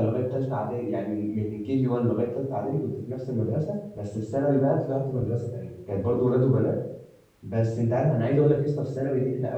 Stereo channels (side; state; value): both; identical; correlation 1.00